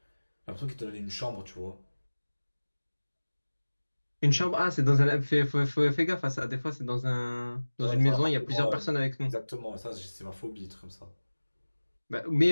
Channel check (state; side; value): inverted; both; correlation -1.00